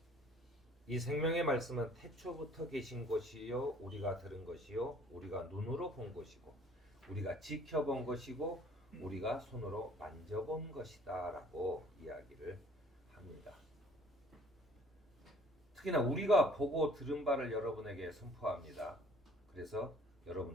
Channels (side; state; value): both; normal; correlation 0.56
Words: 이 생명의 말씀은 태초부터 계신 것이요 우리가 들은 것이요 우리가 눈으로 본 것이고 우리가 지켜본 것이고 우리가 손으로 만져본 것이다라고 이야기를 합니다. 특히나 우리가 보고 들은 바를 여러분에게 선포합니다. 그래서